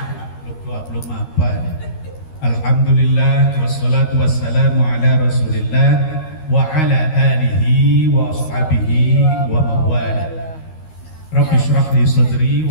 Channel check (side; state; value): right; late; 13 ms